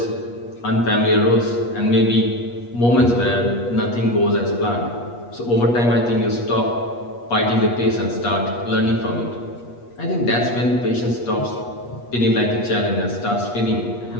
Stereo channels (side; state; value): right; late; 8.4 ms